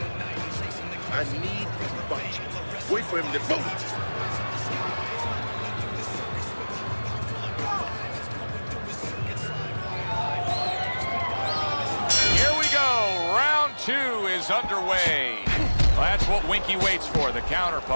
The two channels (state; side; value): inverted; both; correlation -1.00